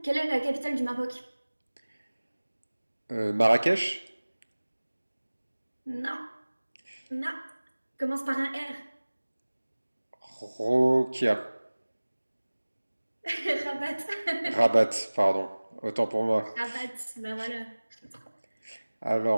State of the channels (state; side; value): inverted; both; correlation -1.00